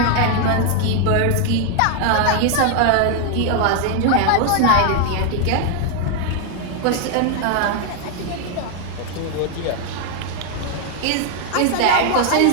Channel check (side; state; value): both; different; correlation 0.00